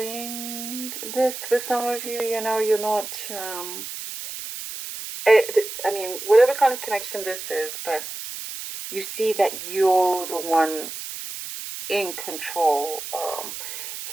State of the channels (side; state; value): right; noise; hiss, 8 dB below the sound